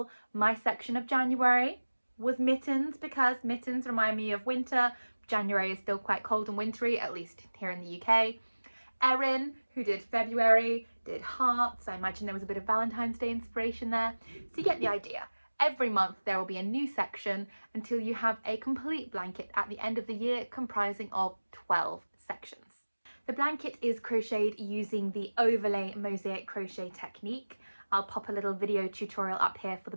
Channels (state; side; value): inverted; both; correlation -1.00